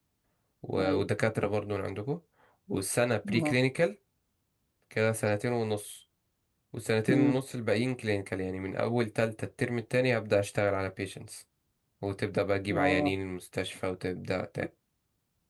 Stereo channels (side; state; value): both; identical; correlation 1.00